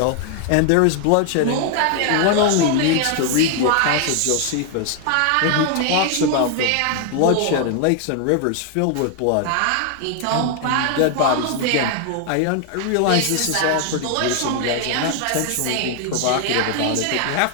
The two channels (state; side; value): different; both; correlation 0.00